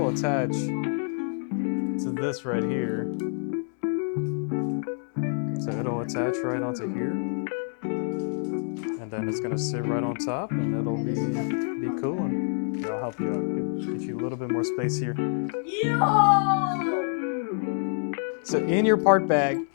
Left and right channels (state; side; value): silent; right; 58 dB below the other